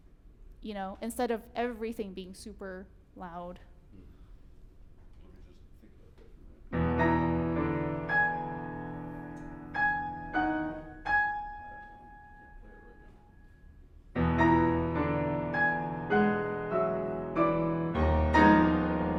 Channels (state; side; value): identical; both; correlation 1.00